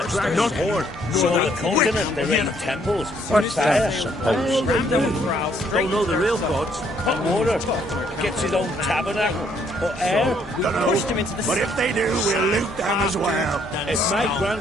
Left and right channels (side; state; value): both; normal; correlation 0.68